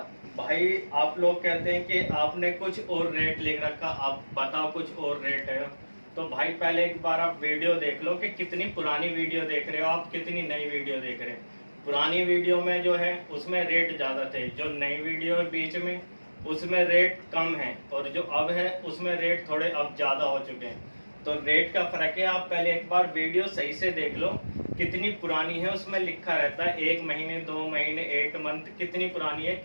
भाई आप लोग कहते हैं कि आपने कुछ और रेट लिख रखा, आप बताओ कुछ और रेट है। तो भाई पहले एक बार आप वीडियो देख लो कि कितनी पुरानी वीडियो देख रहे हो आप, कितनी नई वीडियो देख रहे हैं। पुरानी वीडियो में जो है उसमें रेट ज़्यादा थे, जो नई वीडियो है बीच में उसमें रेट कम है, और जो अब है उसमें रेट थोड़े अब ज़्यादा हो चुके हैं। तो रेट का फ़र्क है। आप पहले एक बार वीडियो सही से देख लो कितनी पुरानी है, उसमें लिखा रहता है 1 महीने 2 महीने 1 मंथ कितनी पुरानी है,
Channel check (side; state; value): both; inverted; correlation -1.00